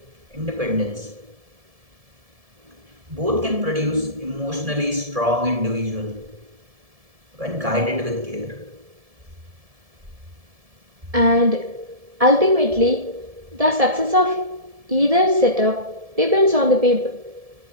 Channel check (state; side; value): late; left; 1.7 ms